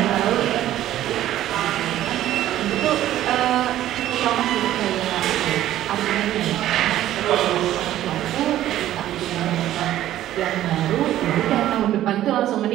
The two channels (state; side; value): quieter; left; 13.2 dB